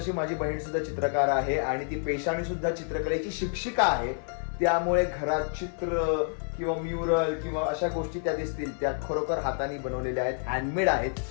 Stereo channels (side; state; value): right; silent; 59 dB below the other